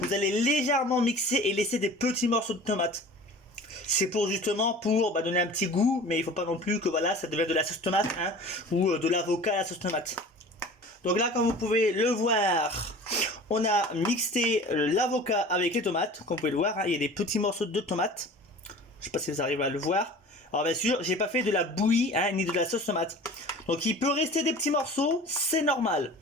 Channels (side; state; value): both; normal; correlation 0.41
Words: Vous allez légèrement mixer et laisser des petits morceaux de tomate. C'est pour justement donner un petit goût, mais il faut pas non plus que voilà ça devienne de la sauce tomate ou de l'avocat à la sauce tomate. Donc là, comme vous pouvez le voir, on a mixé l'avocat avec les tomates. Comme vous pouvez le voir, il y a des petits morceaux de tomates. Je sais pas si vous arrivez à le voir. Alors bien sûr, j'ai pas fait de la bouillie ni de la sauce tomate. Donc il peut rester des petits morceaux, c'est normal.